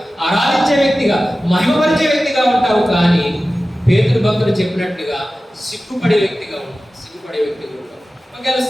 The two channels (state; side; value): normal; both; correlation 0.95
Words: ఆరాధించే వ్యక్తిగా, మహిమపరిచే వ్యక్తిగా ఉంటావు. కానీ పేతురు భక్తుడు చెప్పినట్టుగా సిగ్గుపడే వ్యక్తిగా ఉంటావు. ఒకవేళ